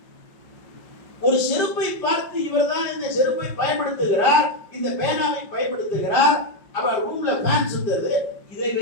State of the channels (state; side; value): late; right; 5.5 ms